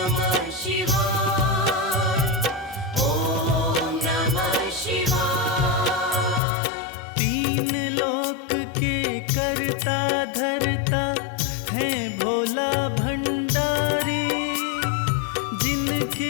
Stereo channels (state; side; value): drops out; right; at 6.4 s